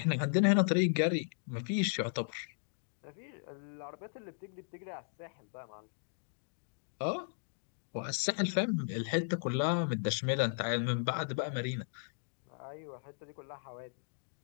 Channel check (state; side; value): silent; right; digital silence